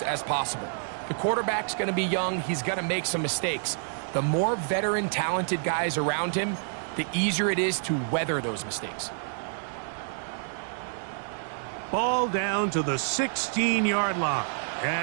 as possible. The quarterback's going to be young. He's going to make some mistakes. The more veteran, talented guys around him, the easier it is to weather those mistakes. Ball down to the 16-yard line.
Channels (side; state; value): left; silent; 59 dB below the other